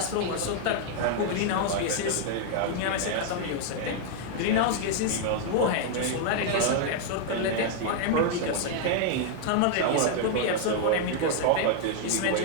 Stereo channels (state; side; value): different; both; correlation 0.00